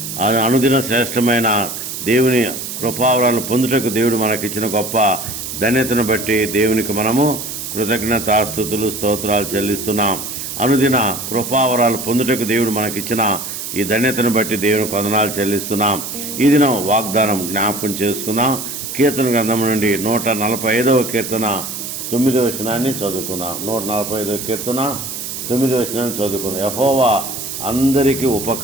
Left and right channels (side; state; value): right; noise; hiss, 7 dB below the sound